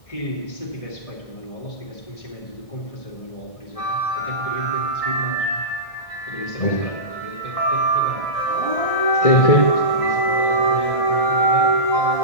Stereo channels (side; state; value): right; late; 1.6 ms